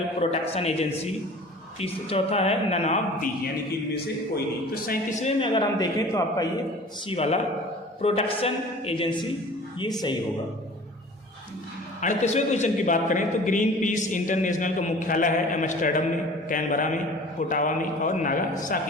protection agency. चौथा है नन ऑफ दी, यानी कि इनमें से कोई नहीं। तो 37वें में अगर हम देखें तो आपका ये सी वाला प्रोटेक्शन एजेंसी ये सही होगा। 38वें क्वेश्चन की बात करें तो ग्रीन पीस इंटरनेशनल का मुख्यालय है एम्स्टर्डम में, कैनबरा में, ओटावा में और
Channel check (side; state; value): both; normal; correlation 0.44